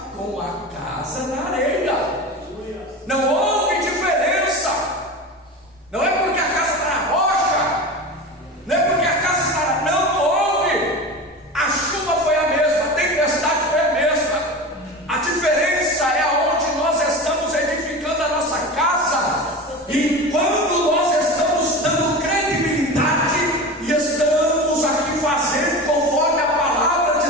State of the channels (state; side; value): normal; both; correlation 0.29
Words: com a casa na areia. Não houve diferença. Não é porque a casa está na rocha, não é porque a casa está na... Não houve. A chuva foi a mesma, a tempestade foi a mesma. A diferença é aonde nós estamos edificando a nossa casa, e quando nós estamos dando credibilidade e estamos aqui fazendo conforme a palavra